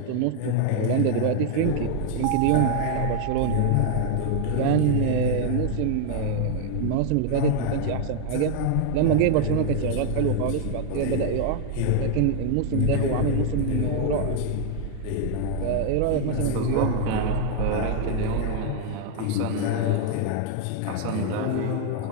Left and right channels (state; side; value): different; both; correlation 0.00